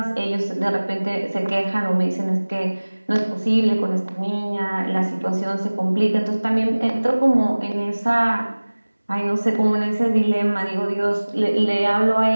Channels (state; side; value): inverted; both; correlation -1.00